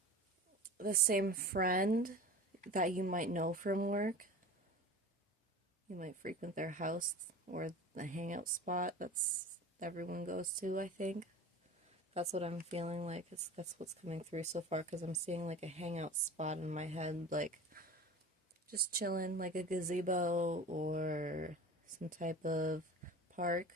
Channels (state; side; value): normal; both; correlation 0.35